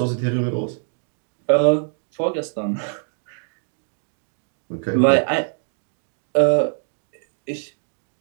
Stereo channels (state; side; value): silent; left; digital silence